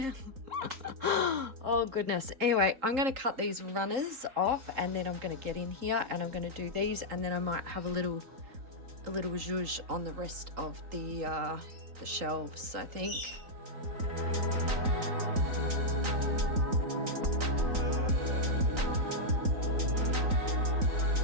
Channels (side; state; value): left; late; 3.8 ms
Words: Oh, goodness. Anyway, I'm going to cut these runners off and then I'm going to get in here and I'm going to do these. And then I might have a little zhuzh on the rest of the shelves, I think.